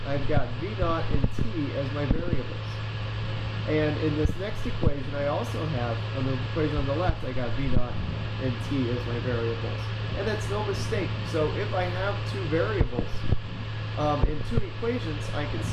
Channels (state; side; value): identical; both; correlation 1.00